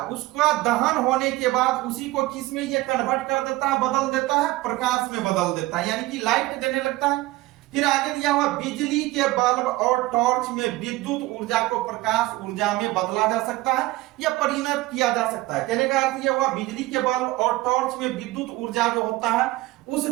उसका दहन होने के बाद उसी को किस में ये कन्वर्ट कर देता है, बदल देता है, प्रकाश में बदल देता है, यानी कि लाइट देने लगता है। फिर आगे दिया हुआ बिजली के बल्ब और टॉर्च में विद्युत ऊर्जा को प्रकाश ऊर्जा में बदला जा सकता है या परिणत किया जा सकता है। कहने का अर्थ यह हुआ बिजली के बल्ब और टॉर्च में विद्युत ऊर्जा जो होता है उस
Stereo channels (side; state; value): left; quieter; 18.9 dB